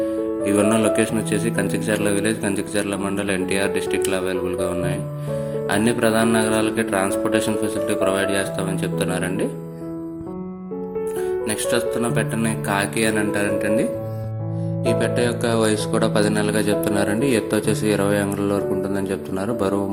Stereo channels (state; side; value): identical; both; correlation 1.00